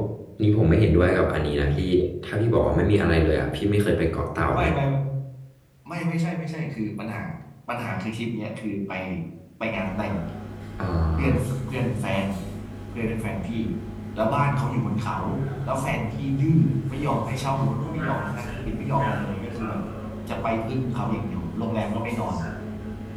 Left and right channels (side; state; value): both; identical; correlation 1.00